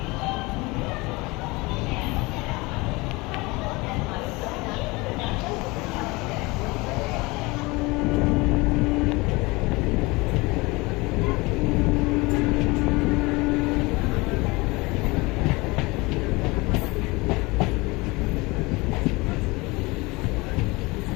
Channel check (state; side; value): quieter; right; 24.0 dB